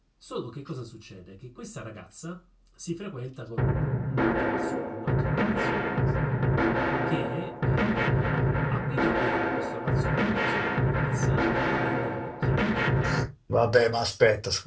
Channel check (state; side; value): identical; both; correlation 1.00